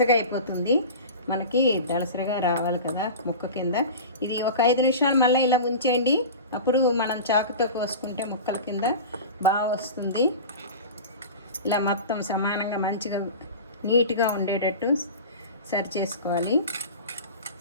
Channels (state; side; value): inverted; both; correlation -0.32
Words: అయిపోతుంది. మనకి దళసరిగా రావాలి కదా ముక్క కింద. ఇది ఒక 5 నిమిషాలు మళ్ళీ ఇలా ఉంచేయండి. అప్పుడు మనం చాకుతో కోసుకుంటే ముక్కల కింద బాగా వస్తుంది. ఇలా మొత్తం సమానంగా మంచిగా నీట్గా ఉండేటట్టు సరి చేసుకోవాలి.